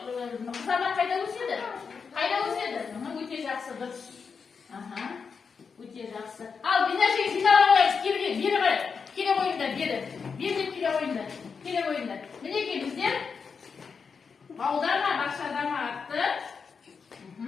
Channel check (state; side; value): quieter; right; 5.6 dB